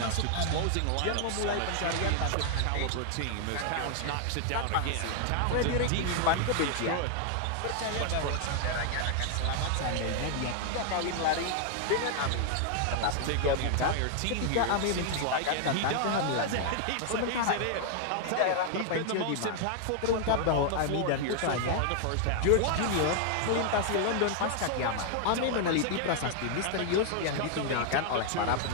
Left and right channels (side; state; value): both; different; correlation 0.00